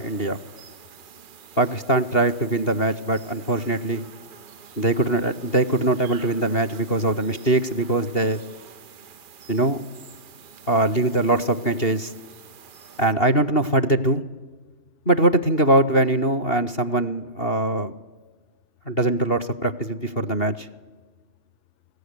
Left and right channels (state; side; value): late; right; 2.8 ms